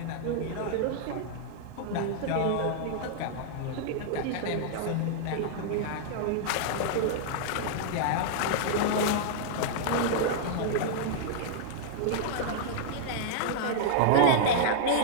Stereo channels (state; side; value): different; both; correlation -0.01